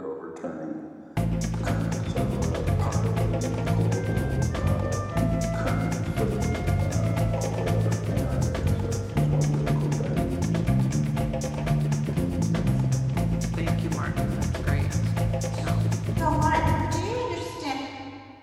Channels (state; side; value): identical; both; correlation 1.00